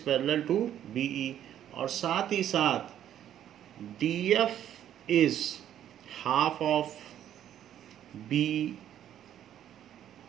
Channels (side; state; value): left; quieter; 10.8 dB